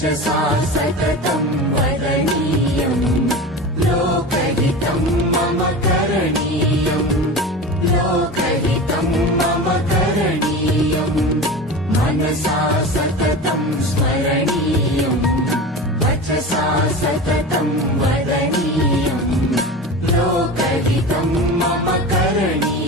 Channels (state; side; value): normal; both; correlation 0.30